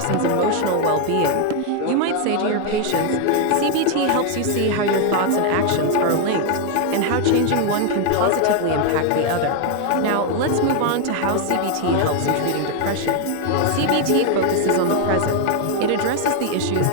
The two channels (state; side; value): different; both; correlation 0.01